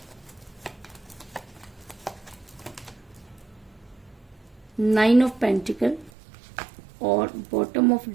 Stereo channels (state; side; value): drops out; left; at 6.1 s